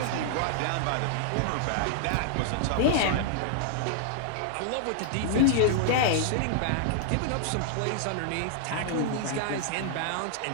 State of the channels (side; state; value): both; different; correlation -0.01